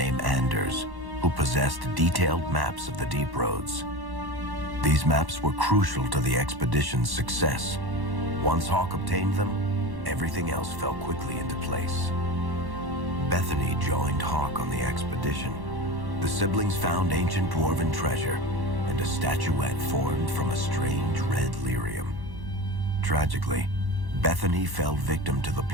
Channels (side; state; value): left; late; 1.1 ms